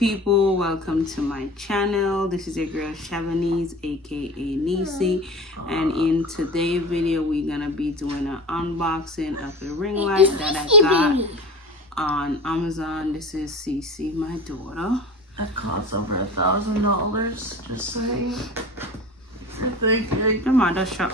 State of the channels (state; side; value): normal; both; correlation 0.33